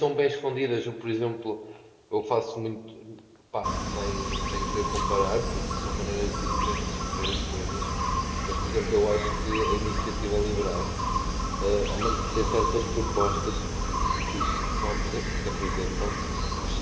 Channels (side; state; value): both; identical; correlation 1.00